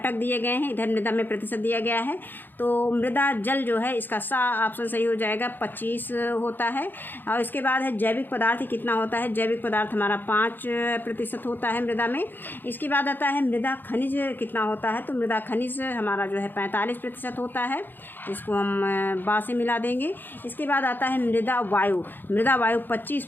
दिए गए हैं, इधर मृदा में प्रतिशत दिया गया है। तो मृदा जल जो है इसका सा ऑप्शन सही हो जाएगा, 25 होता है। और इसके बाद है जैविक पदार्थ कितना होता है। जैविक पदार्थ हमारा 5% होता है मृदा में। इसके बाद आता है मृदा खनिज कितना होता है। तो मृदा खनिज हमारा जो है 45% होता है, इसको हम बा से मिला देंगे। इसके बाद आता है मृदा वायु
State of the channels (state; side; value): late; right; 0.093 ms